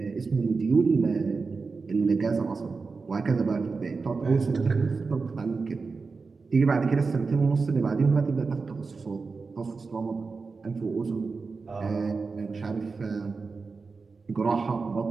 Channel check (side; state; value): left; quieter; 4.4 dB